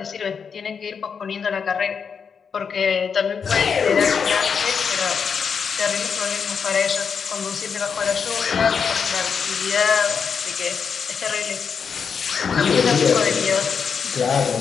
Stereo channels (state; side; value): quieter; right; 6.3 dB